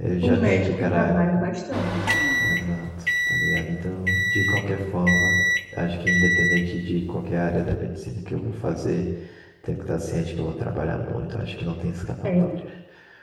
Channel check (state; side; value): identical; both; correlation 1.00